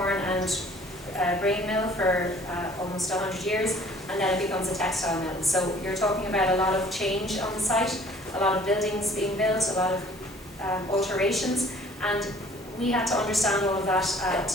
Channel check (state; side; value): normal; both; correlation 0.53